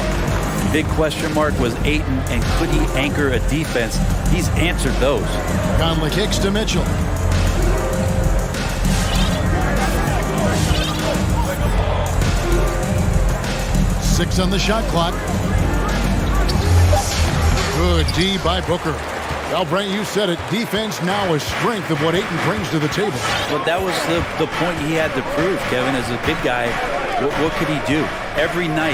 Big question mark was Ayton, and could he anchor a defense? He's answered those. Conley kicks to Mitchell. Six on the shot clock. Good D by Booker. Well, Brent, you said it. Defense now a strength of what Ayton brings to the table. But that was the point he had to prove, Kevin. As a big guy, what could he do? Every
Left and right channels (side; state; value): both; identical; correlation 1.00